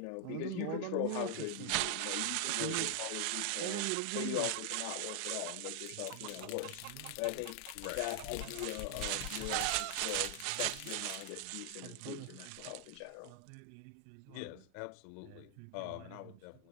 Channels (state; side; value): different; both; correlation 0.00